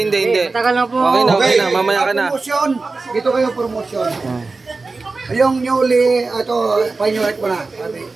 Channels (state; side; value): quieter; left; 3.8 dB